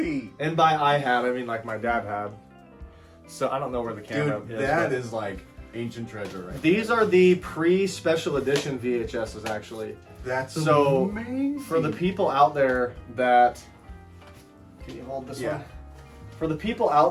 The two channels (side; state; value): both; identical; correlation 1.00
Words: And by I had, I mean like my dad had. So I don't know where the camera Dude, is. that is like ancient treasure right These are the pre-special edition VHSs actually. That's so amazing. For the people out there that can you hold this Yeah. one? For the people